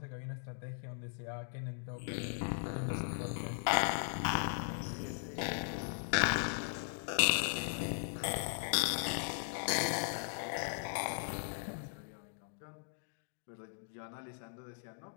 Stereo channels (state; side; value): silent; right; digital silence